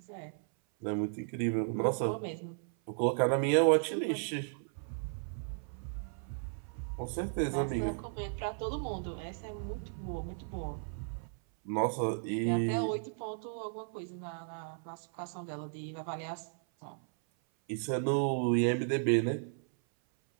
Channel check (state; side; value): silent; left; 55 dB below the other